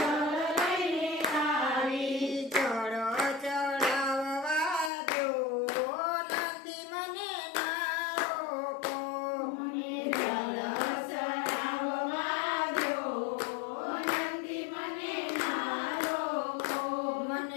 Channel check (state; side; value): drops out; right; at 4.9 s